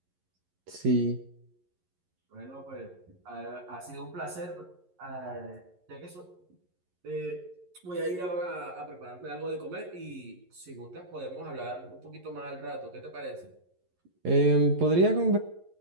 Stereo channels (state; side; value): late; left; 11 ms